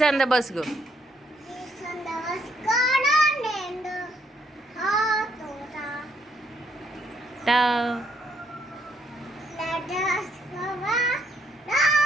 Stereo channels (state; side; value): normal; both; correlation 0.73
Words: on the bus go.